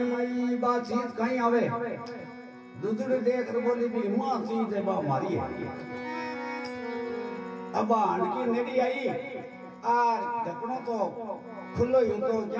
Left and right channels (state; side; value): identical; both; correlation 1.00